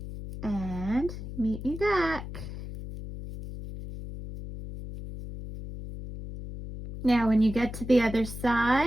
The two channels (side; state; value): left; noise; hum, 10 dB below the sound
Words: and meet me back. Now when you get to the other